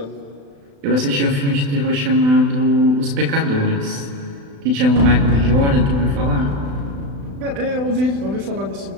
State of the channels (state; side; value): late; left; 36 ms